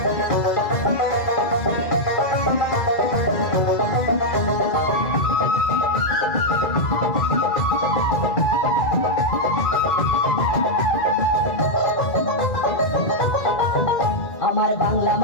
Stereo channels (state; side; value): late; right; 2.0 ms